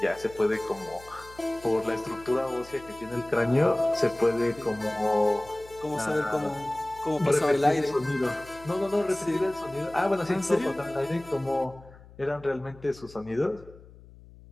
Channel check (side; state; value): left; noise; hum, 21 dB below the sound